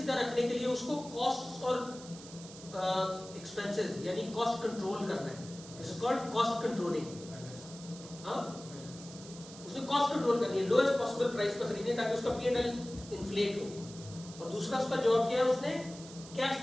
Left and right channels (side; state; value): right; noise; hiss, 16 dB below the sound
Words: रखने के लिए उसको कॉस्ट और एक्सपेंसेस यानी कॉस्ट कंट्रोल करना है। It's called cost controlling. हाँ, उसने कॉस्ट कंट्रोल करनी है, लोएस्ट पॉसिबल प्राइस पर खरीदनी ताकि उसका P&L इन्फ्लेट हो। और दूसरा उसका जॉब क्या है, उसने कैश